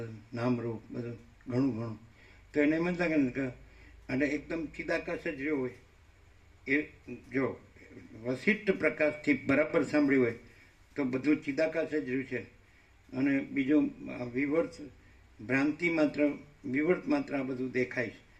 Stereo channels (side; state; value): both; identical; correlation 1.00